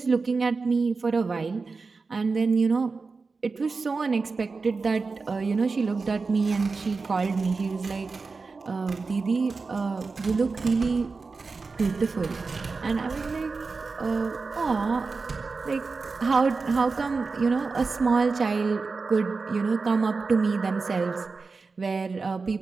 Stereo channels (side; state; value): left; quieter; 4.3 dB